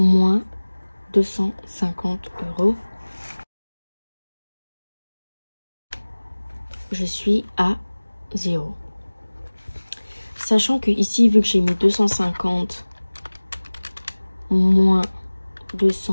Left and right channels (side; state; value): both; inverted; correlation -1.00